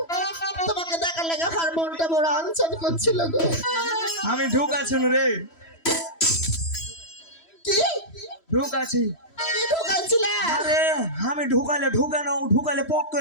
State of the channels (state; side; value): late; right; 3.1 ms